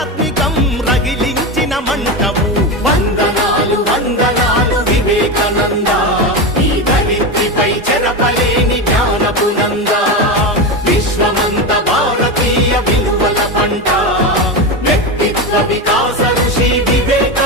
రగిలించిన మంటవు వందనాలు వందనాలు వివేకానంద ఈ ధరిత్రిపై చెరపలేని జ్ఞానపు నంద విశ్వమంత భారతీయ విలువల పంట వ్యక్తిత్వ వికాస ఋషి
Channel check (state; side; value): normal; both; correlation 0.17